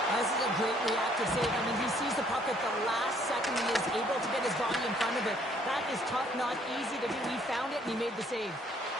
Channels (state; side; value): normal; both; correlation 0.63